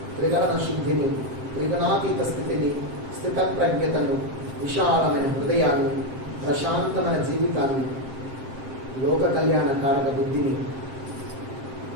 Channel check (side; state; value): left; late; 7.6 ms